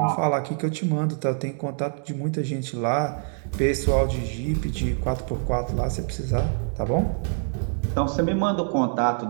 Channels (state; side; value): silent; left; 62 dB below the other